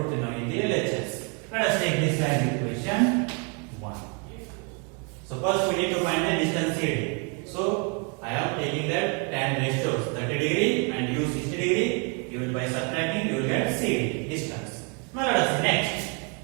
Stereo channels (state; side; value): quieter; left; 34.8 dB